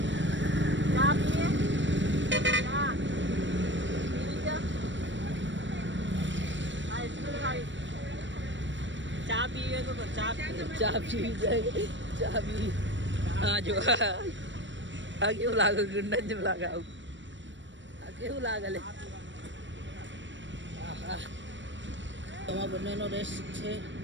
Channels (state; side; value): late; left; 0.54 ms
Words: ચા પીએ ચા પીવે તો ચા પીવી જાય. ચા પી હા જો આ કેવું લાગે? ગુંડા જેવું લાગે. આવું આ કેવું લાગે લે? તમારા બંનેનો રેસ્ટ છે.